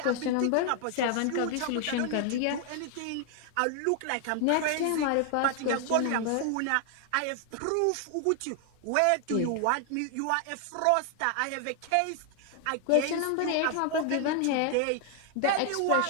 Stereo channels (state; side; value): different; both; correlation 0.00